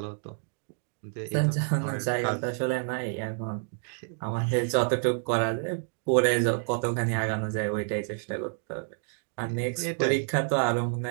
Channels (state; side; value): silent; left; 56 dB below the other